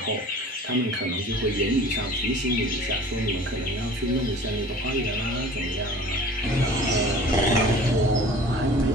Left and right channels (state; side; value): normal; both; correlation 0.44